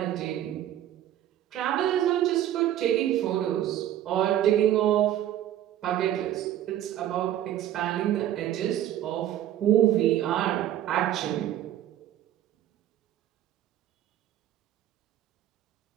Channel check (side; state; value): left; quieter; 12.0 dB